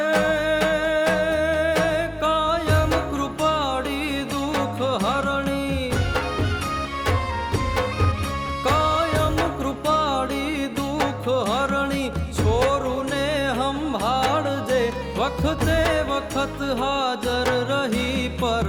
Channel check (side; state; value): both; identical; correlation 1.00